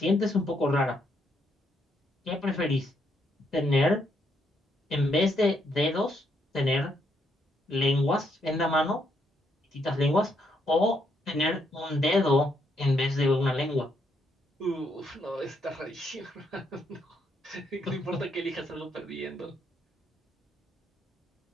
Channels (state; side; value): normal; both; correlation 0.75